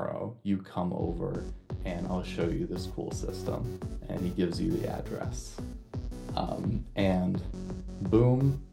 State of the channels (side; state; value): both; identical; correlation 1.00